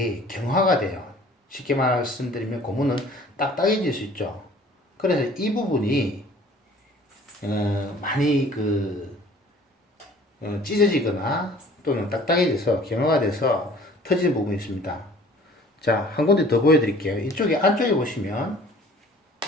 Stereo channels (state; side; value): normal; both; correlation 0.51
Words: 경화가 돼요. 쉽게 말씀드리면 고무는 딱딱해질 수 있죠. 그래서 이 부분이 많이 찢어지거나 또는 딱딱해져서 경화가 돼서 터지는 부분이 있습니다. 자, 한 군데 더 보여드릴게요. 이쪽에 안쪽에 보시면,